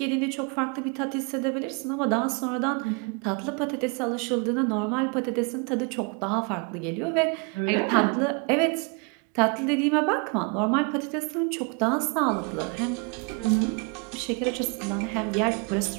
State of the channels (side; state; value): left; quieter; 33.0 dB